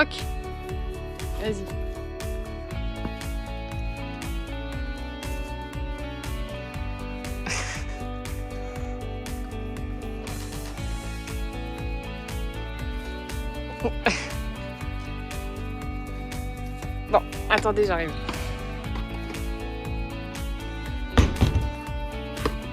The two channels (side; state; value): both; identical; correlation 1.00